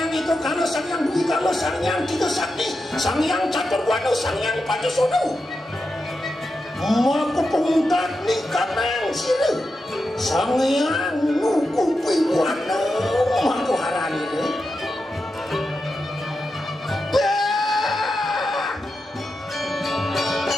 itu karena Sanghyang Dwi kalau Sanghyang Tiga Sakti Sanghyang Catur Wanu Sanghyang Pancasono mau kepungkat nih kanang sila Sanghyang Nukupi Wanu mau harani deh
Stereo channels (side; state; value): both; normal; correlation 0.88